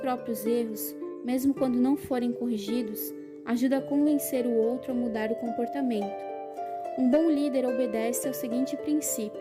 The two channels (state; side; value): identical; both; correlation 1.00